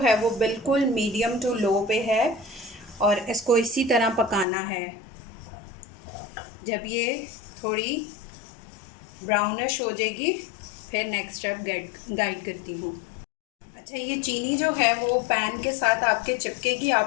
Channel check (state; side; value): drops out; right; at 4.5 s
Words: वो बिल्कुल मीडियम टू लो पे है और इसको इसी तरह पकाना है। जब ये थोड़ी ब्राउनिश हो जाएगी फिर नेक्स्ट स्टेप गाइड करती हूँ। अच्छा, ये चीनी जो है वो पैन के साथ आपके चिपकेगी।